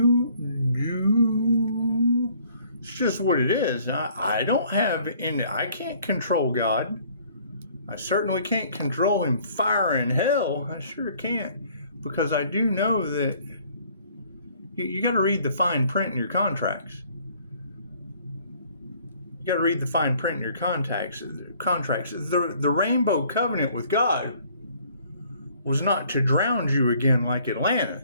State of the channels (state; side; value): inverted; both; correlation -0.59